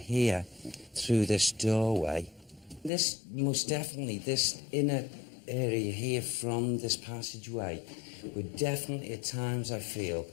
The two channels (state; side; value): drops out; right; at 2.9 s